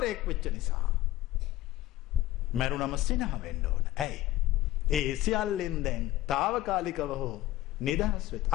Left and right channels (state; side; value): quieter; right; 15.5 dB